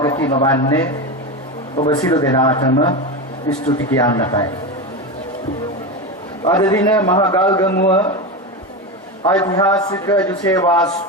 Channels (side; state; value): both; normal; correlation 0.18